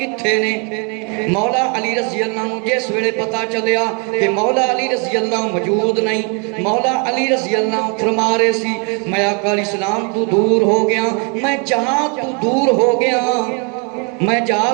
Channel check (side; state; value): left; quieter; 35.4 dB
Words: نے؟ مولا علی رضی اللہ عنہ جس ویلے پتا چلیا کہ مولا علی رضی اللہ موجود نہیں، مولا علی رضی اللہ عنہ فرما رہے سی میں آقا علیہ السلام تو دور ہو گیا، میں جہاں تو دور ہو گیا، میں جہاں